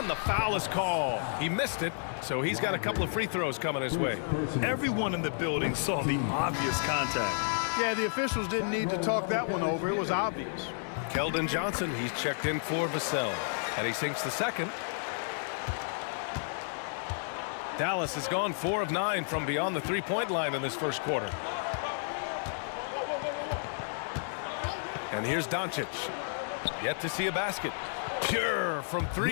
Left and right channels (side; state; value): right; silent; 56 dB below the other